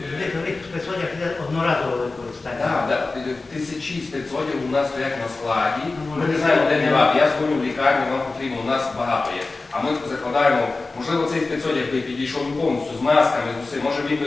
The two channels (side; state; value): right; quieter; 3.5 dB